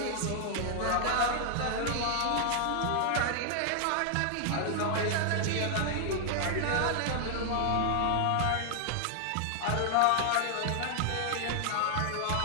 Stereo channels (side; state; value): both; different; correlation 0.00